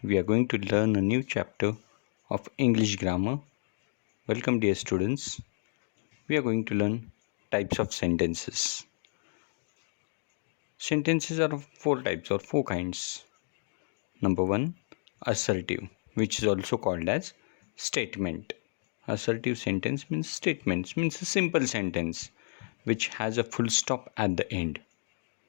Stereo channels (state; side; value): silent; right; digital silence